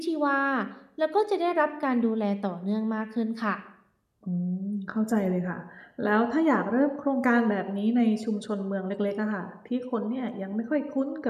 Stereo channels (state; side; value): identical; both; correlation 1.00